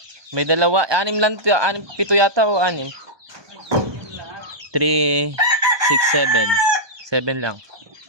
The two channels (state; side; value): late; left; 1.2 ms